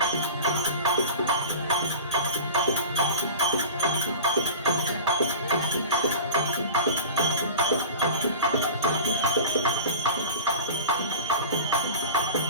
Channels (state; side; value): inverted; both; correlation -0.35